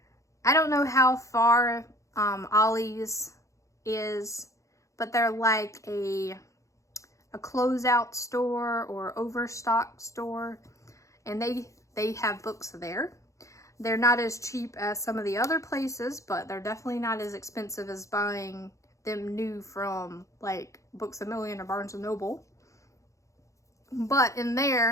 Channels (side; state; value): right; late; 0.15 ms